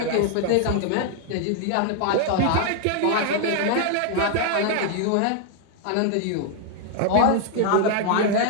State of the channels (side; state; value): both; different; correlation 0.00